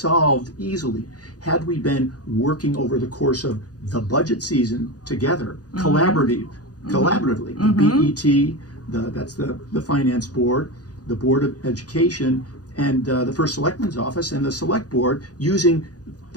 easily. Had we been working over the course of the budget season together, collaboratively, the BET, that's the finance board, the Board of Education, and the First Selectman's Office and the Select Board, using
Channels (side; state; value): right; late; 0.68 ms